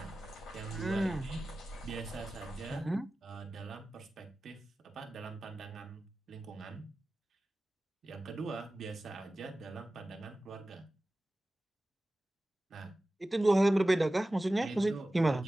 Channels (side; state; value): both; normal; correlation 0.96